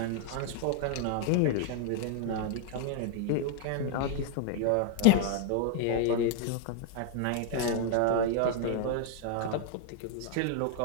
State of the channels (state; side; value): different; both; correlation 0.00